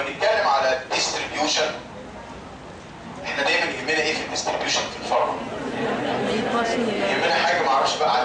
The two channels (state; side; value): identical; both; correlation 1.00